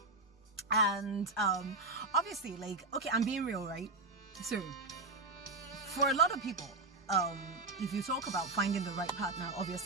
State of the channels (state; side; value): quieter; left; 3.4 dB